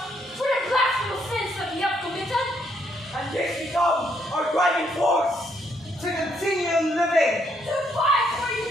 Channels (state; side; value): normal; both; correlation 0.73